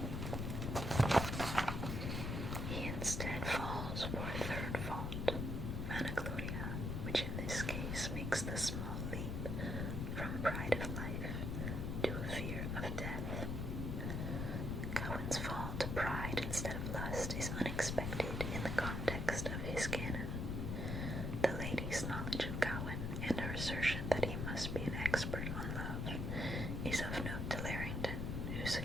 He instead falls for a third fault, vanagloria, which in this case makes the small leap from pride of life to a fear of death. Gawain's fall to pride instead of lust is unexpected in the context of his canon. The lady's knowledge of Gawain and her assertion that he must be an expert on love is of note to Larrington, who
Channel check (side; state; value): left; noise; rumble, 1 dB below the sound